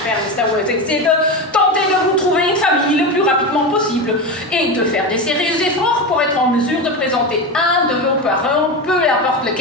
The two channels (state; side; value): normal; both; correlation 0.20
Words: Mr. Worthing, c'est de tenter de vous trouver une famille le plus rapidement possible et de faire des sérieux efforts pour être en mesure de présenter un de vos parents, peu importe